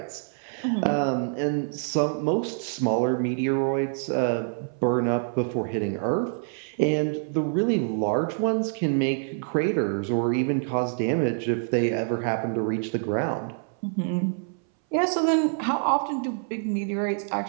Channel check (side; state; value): left; silent; 61 dB below the other